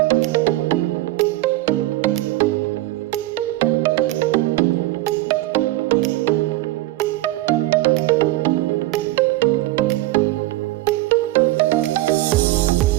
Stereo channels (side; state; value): left; quieter; 17.2 dB